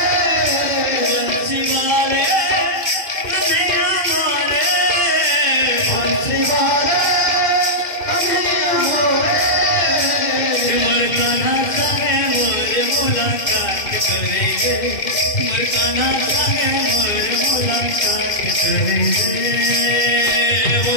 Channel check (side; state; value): right; late; 2.0 ms